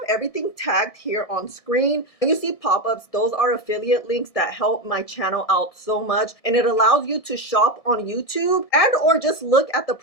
everything tagged here on screen. When you see pop-ups, those are affiliate links that help my channel out so much. And it allows you to shop on YouTube and or just look at the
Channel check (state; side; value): late; right; 1.6 ms